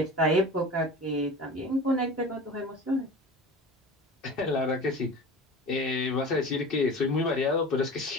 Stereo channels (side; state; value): both; normal; correlation 0.36